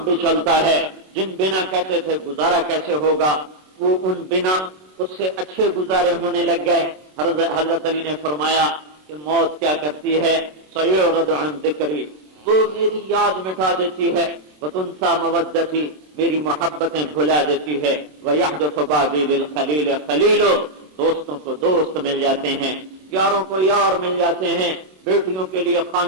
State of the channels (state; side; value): late; left; 27 ms